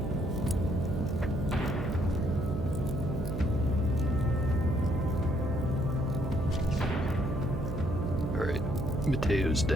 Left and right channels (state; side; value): noise; right; hum, 5 dB below the sound